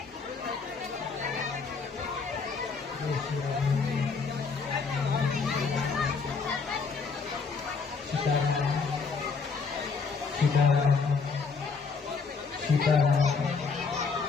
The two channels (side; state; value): right; quieter; 4.9 dB